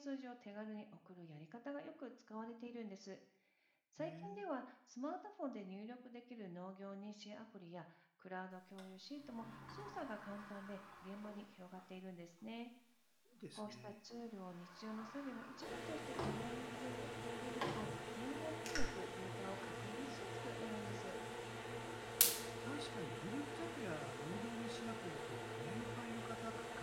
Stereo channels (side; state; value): both; identical; correlation 1.00